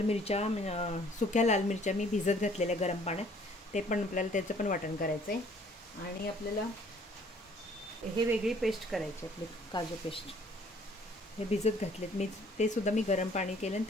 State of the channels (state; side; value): normal; both; correlation 0.58